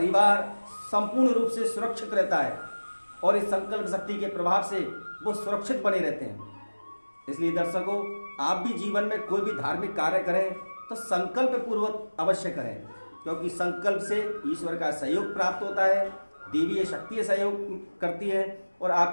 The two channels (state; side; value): inverted; both; correlation -1.00